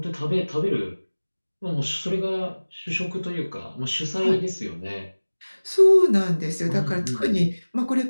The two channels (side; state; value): both; inverted; correlation -1.00